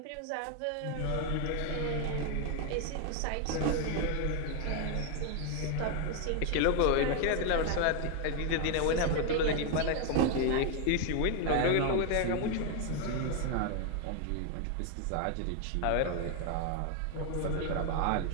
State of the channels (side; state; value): both; different; correlation 0.01